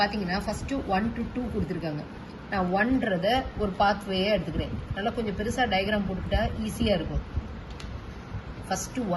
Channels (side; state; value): both; identical; correlation 1.00